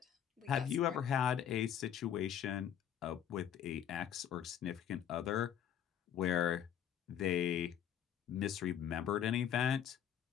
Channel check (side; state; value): right; quieter; 9.5 dB